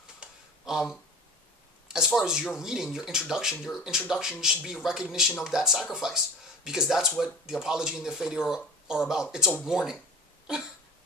As far as your reading, your introduction should be a recognition of that sacrifice, because that's what the Apology and the Phaedo are about. It's a warning.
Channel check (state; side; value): normal; both; correlation 0.37